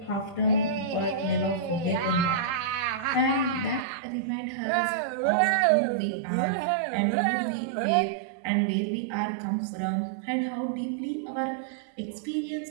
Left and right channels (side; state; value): left; drops out; at 3.9 s